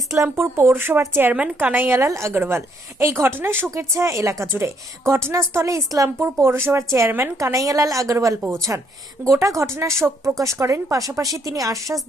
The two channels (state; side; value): normal; both; correlation 0.70